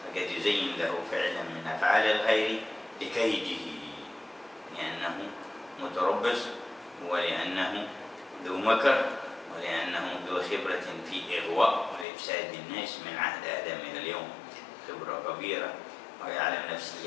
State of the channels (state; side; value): drops out; right; at 12.1 s